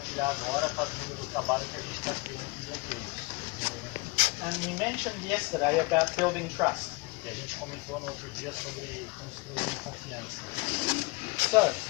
agora está vindo do trabalho que a gente está tendo com bloqueios. And we mentioned yesterday about building trust. E a gente comentou no outro dia sobre construir confiança. So,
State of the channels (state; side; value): quieter; right; 26.4 dB